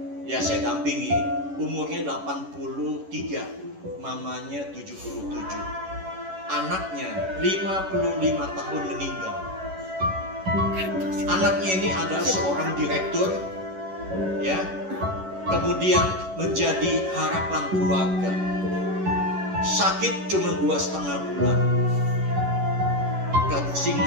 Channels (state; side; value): late; left; 11 ms